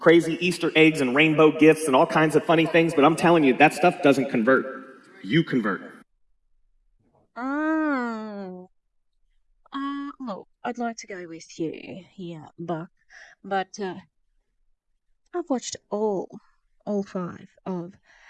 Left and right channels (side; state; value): both; identical; correlation 1.00